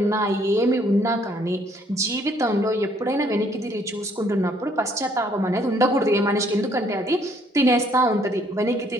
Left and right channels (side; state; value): both; normal; correlation 0.65